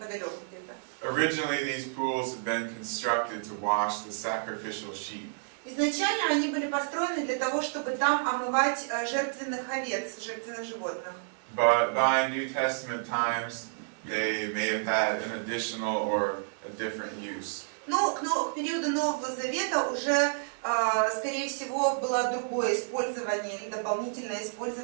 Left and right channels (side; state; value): left; silent; digital silence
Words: где-то. Originally, these pools had been constructed to wash the sacrificial sheep. Изначально они были построены для того, чтобы там омывать жертвенных овец, жертвенных животных. But by New Testament times, they may have had an additional or a different use. Но к периоду Нового Завета уже, скорее всего, было другое использование или дополнительное